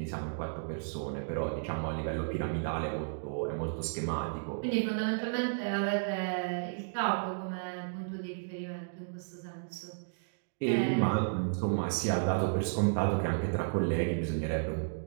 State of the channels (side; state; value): left; silent; digital silence